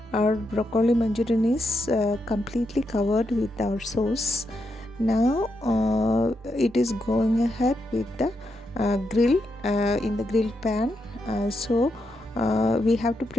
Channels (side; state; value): both; normal; correlation 0.83